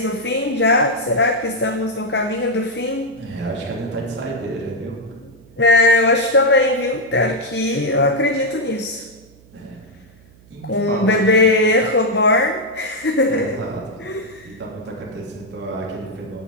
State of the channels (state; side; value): noise; right; hum, 26 dB below the sound